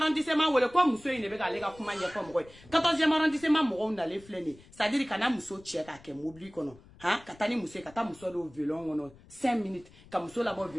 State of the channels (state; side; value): noise; left; rumble, 23 dB below the sound